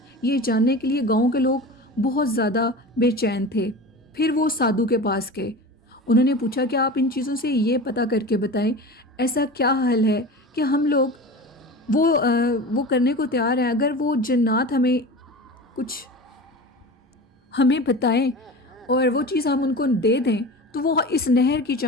یہ جاننے کے لیے گاؤں کے لوگ بہت زیادہ بے چین تھے۔ پھر وہ سادھو کے پاس گئے، انہوں نے پوچھا کہ آپ ان چیزوں سے یہ پتہ کر کے بتائیں ایسا کیا حل ہے کہ ہم لوگ وہ کرنے کو تیار ہیں، اگر وہ جنات ہمیں بتائیں اور وہ چیز ہم ان کو دے دیں تو وہ اس نہر کی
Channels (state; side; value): normal; both; correlation 0.32